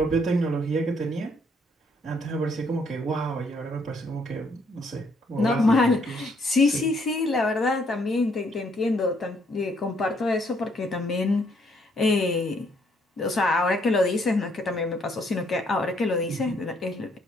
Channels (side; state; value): both; normal; correlation 0.69